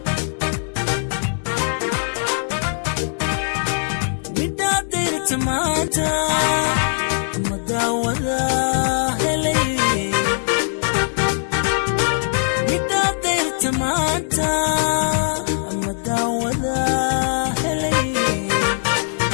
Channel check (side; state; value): right; silent; digital silence